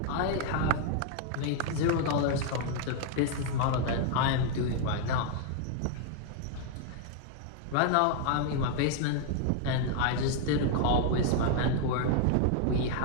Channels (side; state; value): both; different; correlation 0.00